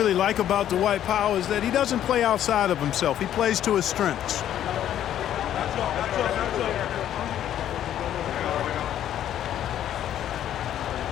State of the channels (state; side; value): quieter; right; 11.1 dB